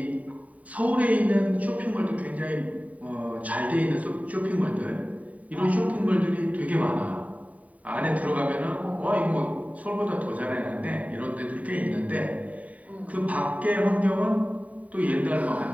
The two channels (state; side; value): late; left; 0.070 ms